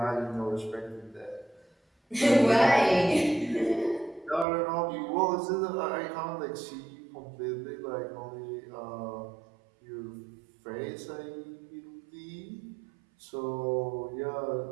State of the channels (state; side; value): drops out; left; at 4.5 s